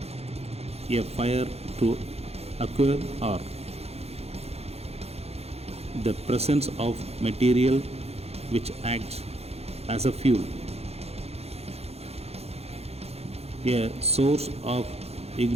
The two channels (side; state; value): left; late; 0.30 ms